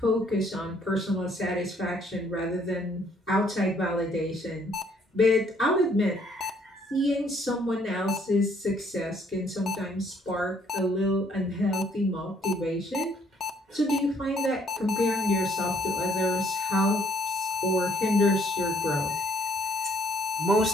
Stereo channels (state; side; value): normal; both; correlation 0.65